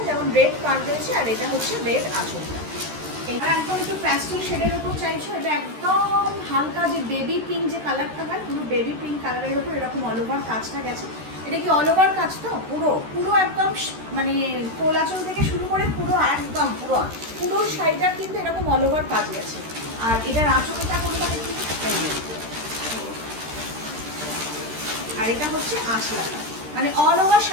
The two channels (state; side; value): late; left; 13 ms